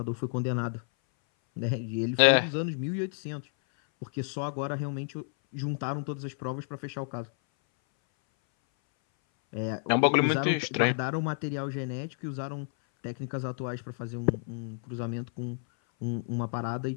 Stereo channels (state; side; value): silent; right; 57 dB below the other